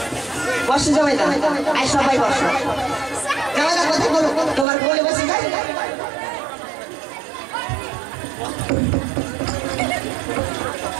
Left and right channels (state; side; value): drops out; left; at 4.7 s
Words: বসো জামাই দা, আই সবাই বসো। জামাই দা কথা বলো, তোমার কোলে বসে যাই।